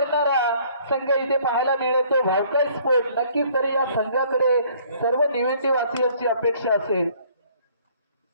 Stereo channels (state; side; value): inverted; both; correlation -0.58